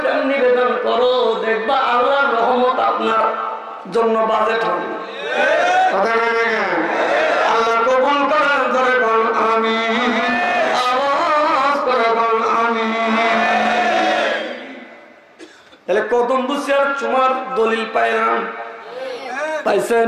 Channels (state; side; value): identical; both; correlation 1.00